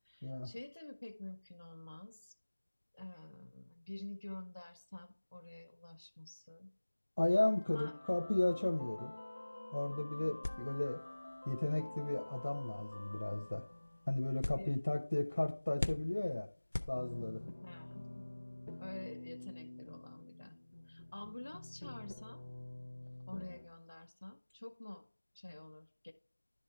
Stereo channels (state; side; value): inverted; both; correlation -1.00